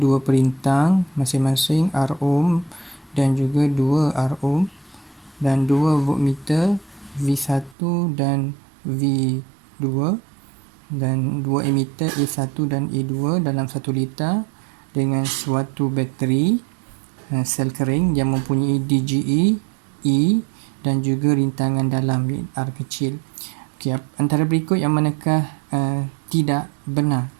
dua perintang masing-masing R ohm dan juga 2 R ohm dan 2 voltmeter V1 dan V2 dan 2 emitter A1 dan A2 dalam 1 liter dengan suatu bateri sel kering yang mempunyai DGE, E dan juga rintangan dalam R kecil. Okey, antara berikut yang manakah tidak benar?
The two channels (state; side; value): drops out; left; at 7.8 s